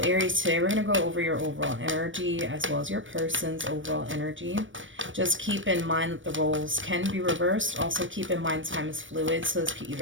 Aries, today we're going to go over your overall energy as well as your person's overall energy. Just keep in mind that the roles can be reversed. Also keep in mind time is fluid, so this could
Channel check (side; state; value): left; late; 0.56 ms